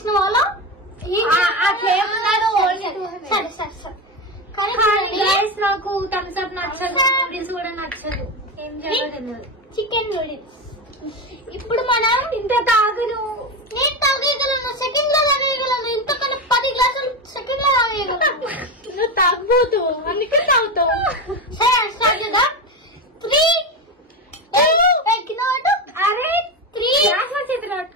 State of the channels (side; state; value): both; normal; correlation 0.17